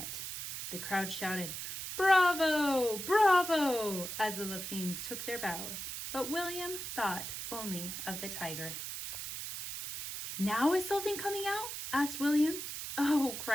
The crowd shouted, Bravo! Bravo! as the Lapines took their bows. But William thought only of the tiger. Now is Sultan coming out? Asked William. Oh,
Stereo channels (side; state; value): right; noise; hiss, 6 dB below the sound